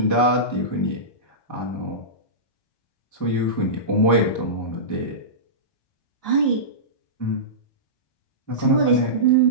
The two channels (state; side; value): late; right; 1.2 ms